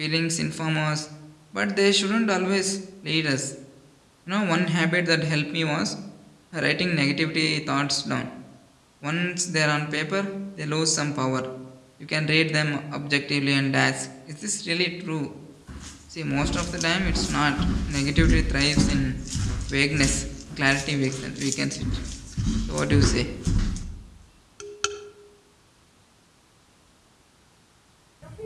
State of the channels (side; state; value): both; identical; correlation 1.00